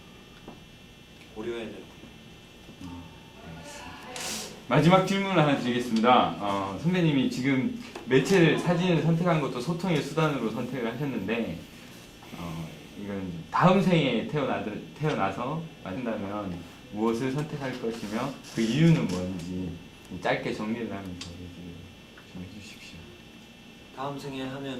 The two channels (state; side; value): identical; both; correlation 1.00